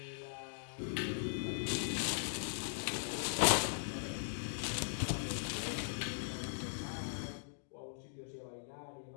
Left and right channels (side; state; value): right; silent; digital silence